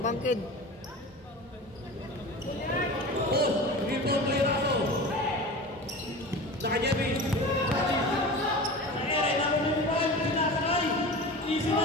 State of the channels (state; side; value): normal; both; correlation 0.33